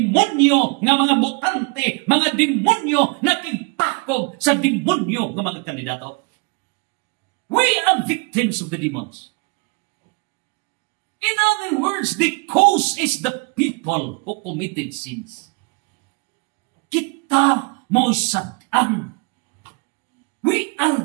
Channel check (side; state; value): left; quieter; 32.3 dB